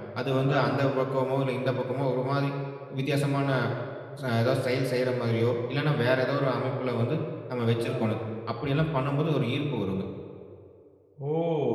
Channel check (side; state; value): both; identical; correlation 1.00